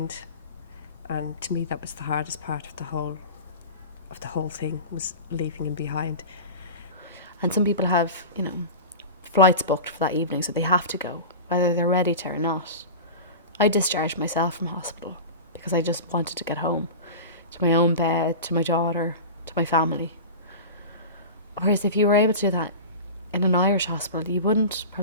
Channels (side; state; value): both; inverted; correlation -0.30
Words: And to me, that was the hardest part of the whole thing, was leaving him behind. And some people have, you know, flights booked for that evening, so they have to go, whether they're ready to or not. I discharged myself from hospital because I just wanted to get home, to my own bed, to my daughter, to my family. Whereas if you were able to do that in an Irish hospital, you wouldn't